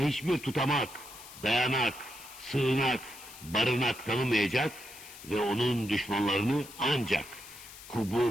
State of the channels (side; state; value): left; noise; hiss, 16 dB below the sound